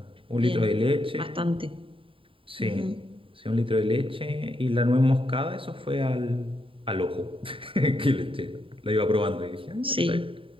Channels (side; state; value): left; late; 0.25 ms